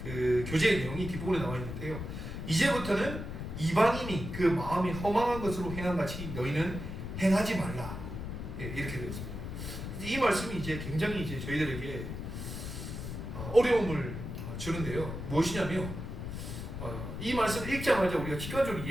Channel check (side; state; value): left; noise; rumble, 7 dB below the sound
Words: 교제의 내용이 뒷부분에 나와 있는데요. 이제부터는 이방인이 그 마음이 허망한 것으로 행한같이 너희는 행하지 말라. 이렇게 되어 있습니다. 이 말씀이 이제 굉장히 이제 저희들에게 어려움을 주는데요. 무엇이냐면, 이 말씀을 읽자마자 우리가 직관적으로